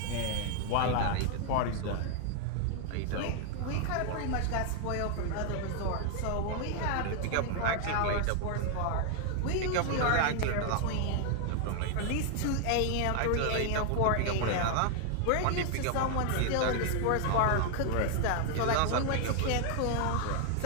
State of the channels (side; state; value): both; different; correlation 0.00